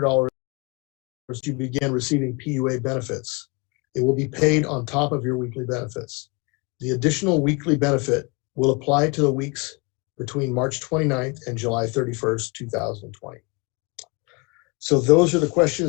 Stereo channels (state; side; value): quieter; right; 29.9 dB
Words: to begin receiving PUA benefits. It will be paid on top of your weekly benefits. The additional weekly benefit will apply to the weeks between March 29th and July 31st, 2020. So those are the